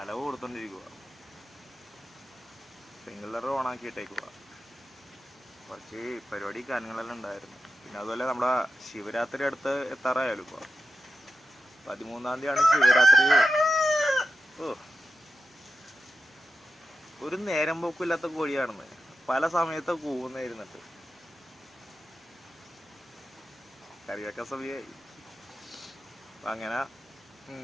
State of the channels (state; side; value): normal; both; correlation 0.91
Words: കൊടുത്തോണ്ടിരിക്കുക, സ്പ്രിംഗ്ലർ ഓണാക്കിയിട്ടേക്കുക. കുറച്ച് പരിപാടി കാര്യങ്ങളെല്ലാം ഉണ്ടായിരുന്നു. പിന്നെ അതുപോലെ നമ്മുടെ ശിവരാത്രി അടുത്ത് എത്താറായാലും ഇപ്പോൾ 13-ാം തീയതിയാണ് ശിവരാത്രി. ഒരു നേരം പോക്കില്ലാത്ത കോഴിയാണെന്ന് പല സമയത്ത് കൂവുന്നായിരുന്നിട്ട് കറിവെക്കാൻ സമയമായി. അങ്ങനെ